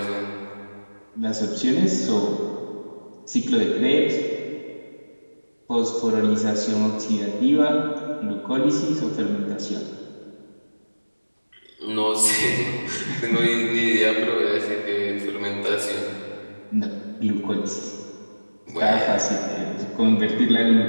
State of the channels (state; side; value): inverted; both; correlation -1.00